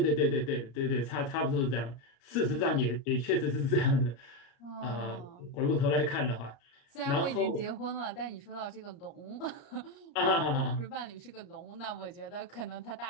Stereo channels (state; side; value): late; right; 34 ms